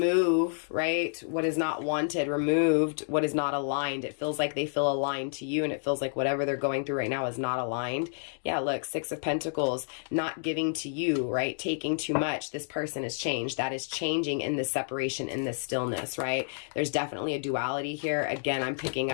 right, what is not wanted, removed what is not aligned. It feels like they feel aligned to you, and it feels like whatever they're going through right now is not aligned. Yeah, look, 6 of Pentacles, not giving to you, right, taking too much. This person is changed. That is changing in this separation, in this stillness, right? There's definitely a duality here. Again, I'm picking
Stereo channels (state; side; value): silent; right; digital silence